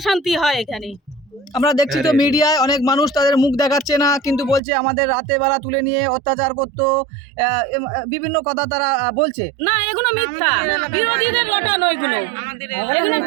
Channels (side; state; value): left; drops out; at 4.6 s